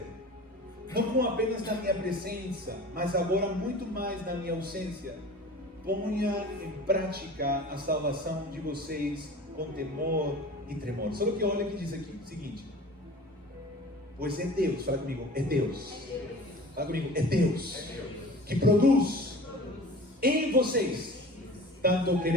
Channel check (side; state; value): both; normal; correlation 0.40